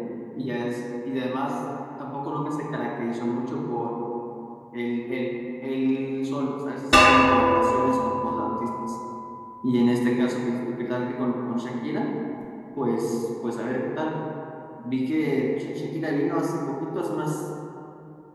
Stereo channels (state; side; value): identical; both; correlation 1.00